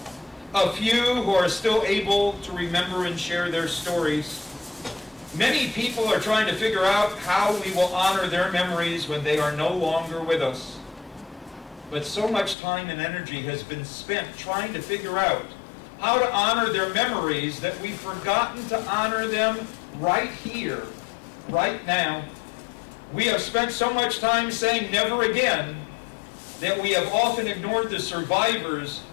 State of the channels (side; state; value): right; drops out; at 12.6 s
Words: a few who are still able to remember and share their stories. Many people are trying to figure out how we will honor their memories when they are no longer with us. But so much time and energy has been spent trying to figure out how to honor their memories that we've forgotten to honor them right here, right now. We have spent so much time saying never again that we have often ignored the survivors